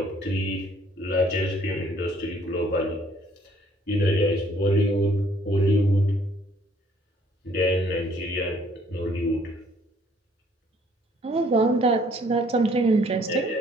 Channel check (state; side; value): normal; both; correlation 0.62